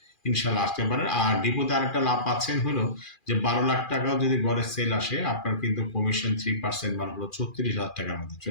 ইনশাল্লাহ আসতে পারেন। আর ডিপোতে আরেকটা লাভ পাচ্ছেন হলো যে 12 লাখ টাকাও যদি গড়ের সেল আসে আপনার কিন্তু কমিশন 3% মানে হলো 36,000 টাকার মধ্যে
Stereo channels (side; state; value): right; late; 2.4 ms